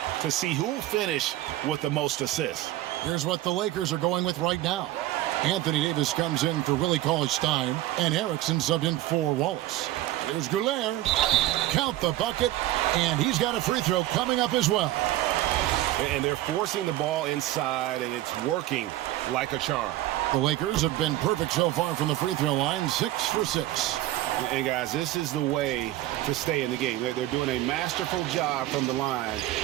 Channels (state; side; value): quieter; left; 15.3 dB